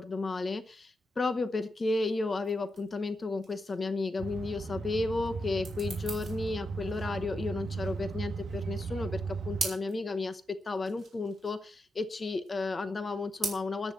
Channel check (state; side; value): normal; both; correlation 0.86